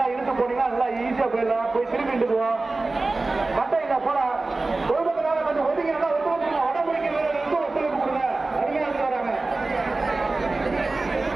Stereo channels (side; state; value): left; quieter; 3.3 dB